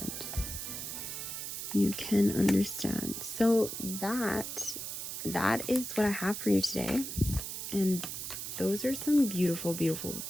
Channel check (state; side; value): noise; right; hiss, 6 dB below the sound